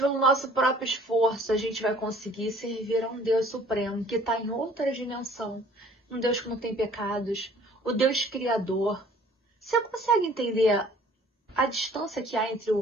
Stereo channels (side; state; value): both; normal; correlation 0.54